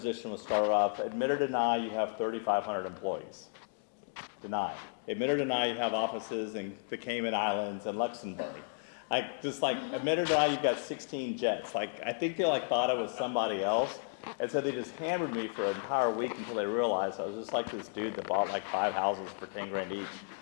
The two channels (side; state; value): right; silent; digital silence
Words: was started off, admit or deny you have 3,500 employees. Deny. Admit or deny you have offices in the Cayman Islands and Luxembourg. Admit or deny you've got 16 jets. I think they thought I was somebody else. And so they just hammered me for an entire week until they realized I was just like this dude that bought 5 houses for 10 grand each.